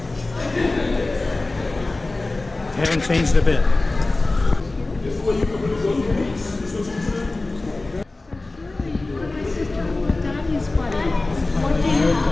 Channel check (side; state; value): right; quieter; 3.1 dB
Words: Haven't changed a bit.